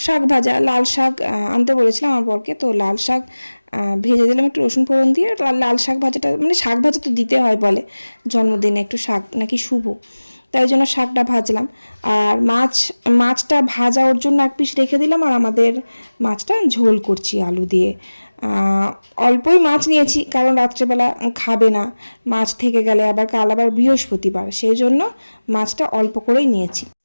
শাক ভাজা, লাল শাক আনতে বলেছিলাম আমার বরকে, তো লাল শাক ভেজে দিলাম একটু রসুন ফোড়ন দিয়ে। লাল শাক ভাজাটা মানে শাক ভাজা তো দিতে হয় বলে, জন্মদিনে একটু শাক নাকি শুভ, তাই জন্য শাকটা ভাজলাম। আর মাছটা ভাজা ওর জন্য 1 পিস রেখে দিলাম, আর আমাদের মাছটা ঝোল করছি আলু দিয়ে। অল্পই মাছ নিয়েছি, কারণ রাত্রেবেলা খাবে না মাছ থেকে গেলে, আবার কাল আবার বৃহস্পতিবার, সেই জন্য মাছটা অল্প করেই নিয়েছি।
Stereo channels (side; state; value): both; inverted; correlation -1.00